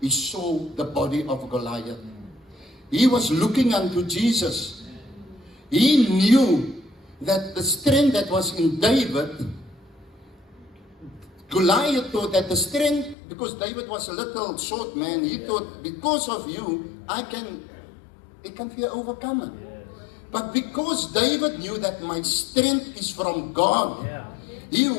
saw the body of Goliath. He was looking unto Jesus. He knew that the strength that was in David, Goliath thought that the strength, because David was a little short man, he thought, because of you, it can be overcome. But because David knew that my strength is from God, he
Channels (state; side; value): drops out; right; at 13.2 s